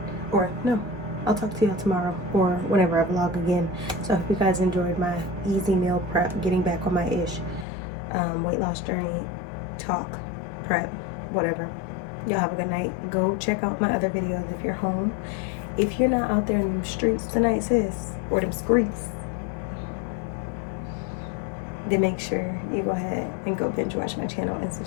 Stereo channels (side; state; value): right; drops out; at 7.7 s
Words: or no, I'll talk to y'all tomorrow or whenever I vlog again. So I hope you guys enjoyed my easy meal prep, getting back on my ish, weight loss journey, talk, prep, whatever. Y'all have a good night. Go check out my other videos if you're home. If you're not out there in the streets tonight, sis, or them streets, then make sure you go ahead and go binge watch my channel and